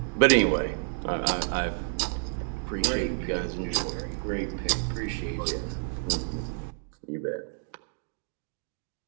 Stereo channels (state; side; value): silent; left; 58 dB below the other